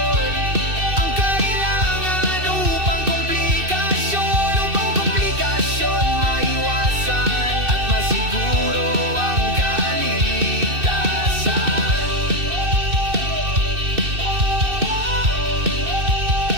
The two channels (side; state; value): left; late; 2.6 ms